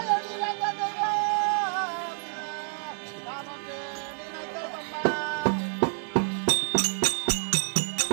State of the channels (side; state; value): left; silent; 59 dB below the other